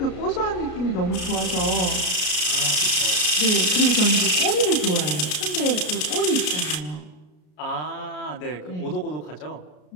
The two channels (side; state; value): right; late; 33 ms